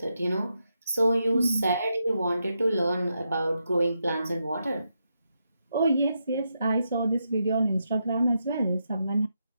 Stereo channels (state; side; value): inverted; both; correlation -0.83